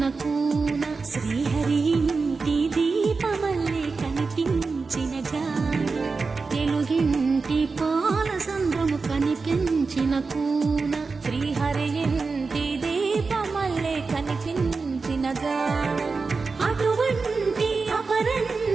కూన శ్రీహరి ఇంటి దీపమల్లే కనిపించిన జాడ తెలుగింటి పాల సంద్రము కనిపించిన కూన శ్రీహరి ఇంటి దీపమల్లే కనిపించిన జాడ అటువంటి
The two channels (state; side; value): quieter; left; 4.3 dB